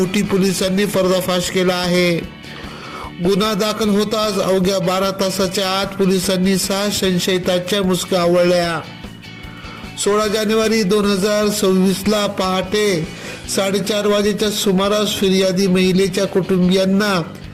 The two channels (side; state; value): both; identical; correlation 1.00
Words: पोलिसांनी पर्दाफाश केला आहे. गुन्हा दाखल होताच अवघ्या 12 तासाच्या आत पोलिसांनी 6 संशयितांच्या मुसक्या आवळल्या. 16 जानेवारी 2026 ला पहाटे 4:30 वाजेच्या सुमारास फिर्यादी महिलेच्या कुटुंबियांना